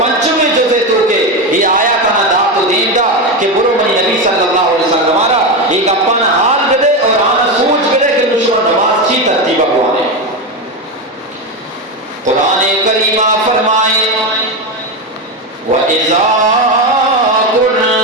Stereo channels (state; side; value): normal; both; correlation 0.14